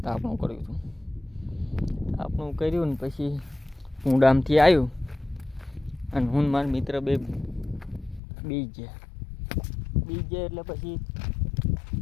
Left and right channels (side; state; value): right; drops out; at 8.2 s